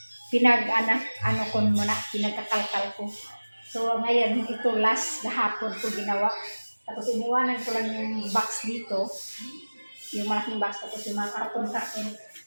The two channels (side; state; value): both; inverted; correlation -1.00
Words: ano ko muna, pinagkakalkal ko. So ngayon ito last gahapon ko ginawa. Tapos iniwanan ko lang yung box dito. Yung malaking box, tapos yung mga karton.